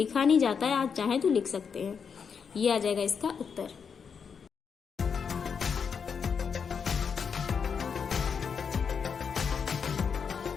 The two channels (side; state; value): right; quieter; 6.4 dB